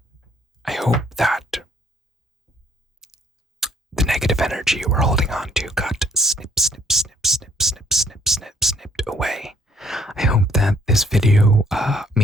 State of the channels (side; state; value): both; normal; correlation 0.65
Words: I hope that the negative energy you were holding on to got snipped away. I hope that this video